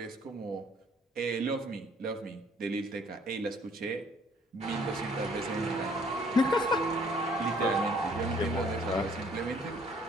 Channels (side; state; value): both; normal; correlation 0.60